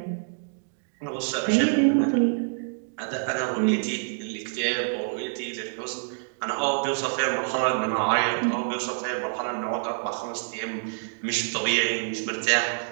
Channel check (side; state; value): left; silent; digital silence